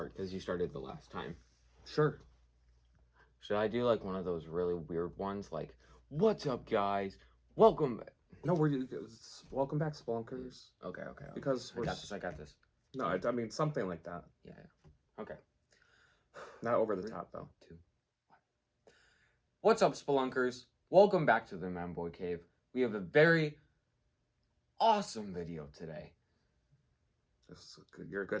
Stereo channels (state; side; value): identical; both; correlation 1.00